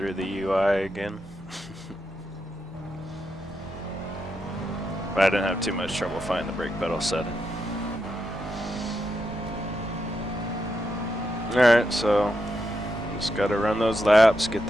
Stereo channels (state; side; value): normal; both; correlation 0.84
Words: the UI again. But I didn't have too much trouble finding the brake pedal setting. Alright, so just gotta run those laps, get